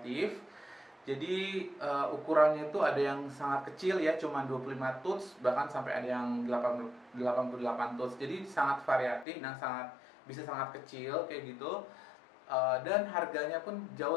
Jadi ukurannya itu ada yang sangat kecil ya, cuma 25 tuts, bahkan sampai ada yang 88 tuts. Jadi sangat variatif dan bisa sangat kecil kayak gitu. Dan harganya pun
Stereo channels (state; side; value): drops out; right; at 9.2 s